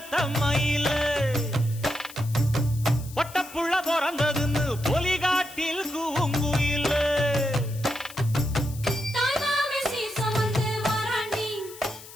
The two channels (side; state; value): left; noise; hiss, 17 dB below the sound